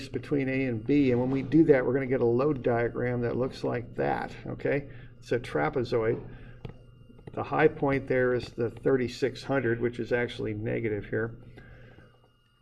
between A and B, and when we do that, we're going to get a load diagram that looks like that, okay? It's a trapezoid. The high point there is the 3,600, which is actually negative here.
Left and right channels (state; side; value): identical; both; correlation 1.00